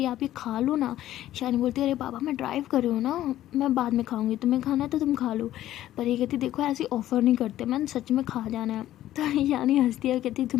है, आप ये खा लो ना। ईशानी बोलती है अरे बाबा मैं ड्राइव कर रही हूँ ना, मैं बाद में खाऊंगी, तुम्हें खाना है तो तुम खा लो। पर ये कहती देखो ऐसी ऑफ़र नहीं करते, मैंने सच में खा जाना है। तो ईशानी हंसती है, कहती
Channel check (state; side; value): quieter; right; 13.4 dB